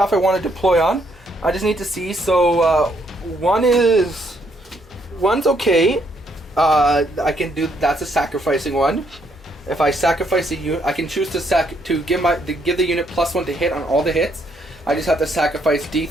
I want to deploy on. I just need to see. So one's okay. I can do, that's a sacrificing one. If I sacrifice a unit, I can choose to give the unit +1 to hit on all the hits. I just have to sacrifice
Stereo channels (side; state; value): both; normal; correlation 0.71